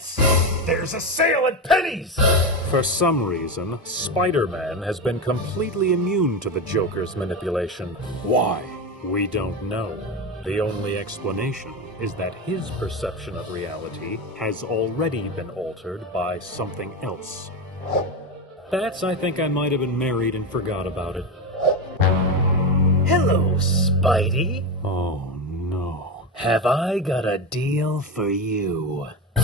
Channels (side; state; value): both; normal; correlation 0.17